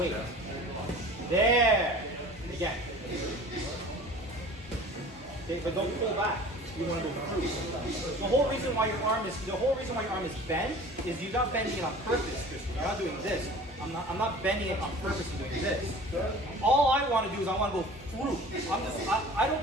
There. Again. Okay, but don't pull back. You want to go through. The whole reason why your arm is bent is you're not bending it on purpose, Christian. You're not doing this. I'm not bending it on purpose and doing this. All I want to do is I want to go through. I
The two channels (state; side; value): normal; both; correlation 0.43